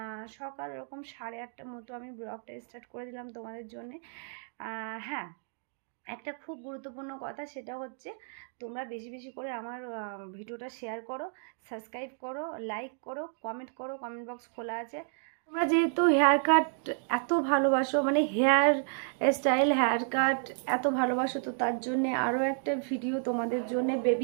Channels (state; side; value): silent; left; 57 dB below the other